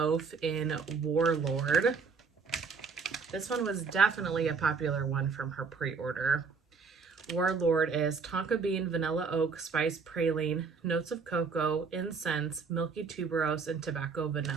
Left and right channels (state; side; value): quieter; left; 5.1 dB